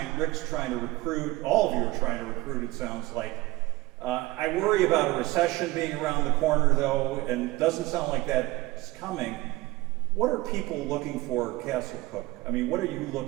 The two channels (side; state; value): left; quieter; 19.7 dB